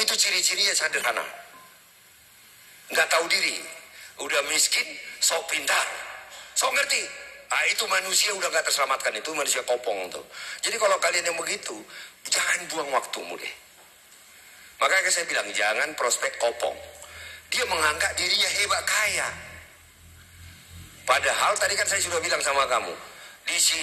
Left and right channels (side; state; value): both; identical; correlation 1.00